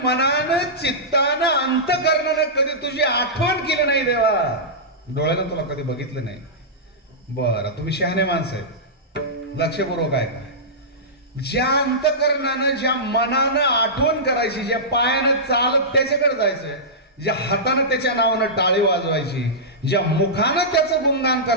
मनानं चित्तानं अंतकरणानं कधी तुझी आठवण केली नाही देवा. डोळ्यानं तुला कधी बघितलं नाही. बरं तुम्ही शहाणे माणसं आहेत, लक्षपूर्वक आहे का. ज्या अंतकरणानं ज्या मनानं आठवण करायची, ज्या पायानं चालत त्याच्याकडे जायचं, ज्या हातानं त्याच्या नावानं टाळी वाजवायची, ज्या मुखानं त्याचं गुणगान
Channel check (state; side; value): normal; both; correlation -0.15